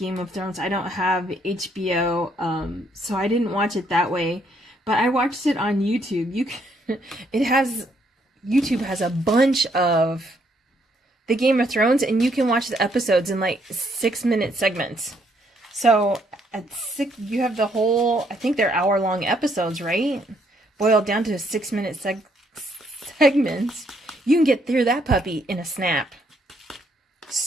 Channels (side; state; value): both; normal; correlation 0.71